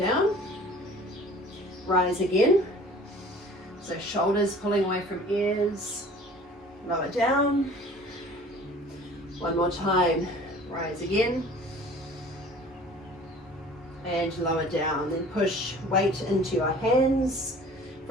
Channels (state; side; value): normal; both; correlation 0.47